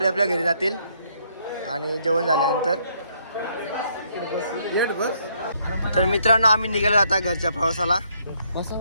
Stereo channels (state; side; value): inverted; both; correlation -0.70